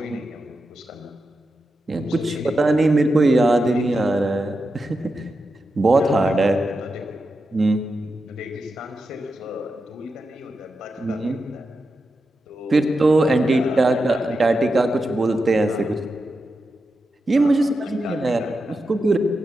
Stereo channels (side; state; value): both; normal; correlation 0.89